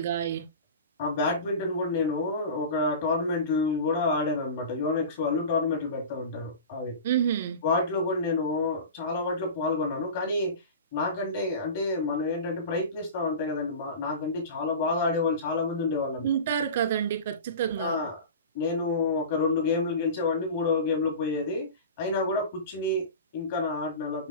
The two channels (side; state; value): both; inverted; correlation -0.31